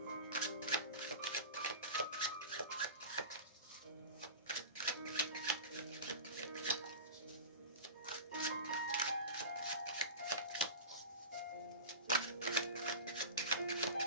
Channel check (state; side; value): inverted; both; correlation -0.31